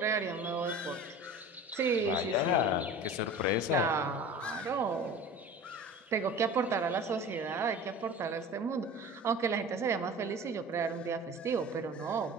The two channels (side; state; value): both; normal; correlation 0.38